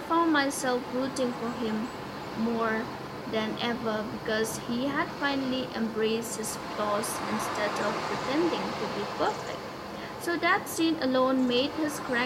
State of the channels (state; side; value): identical; both; correlation 1.00